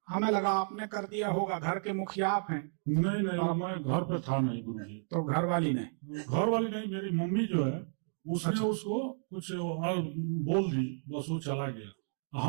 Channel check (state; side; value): silent; left; digital silence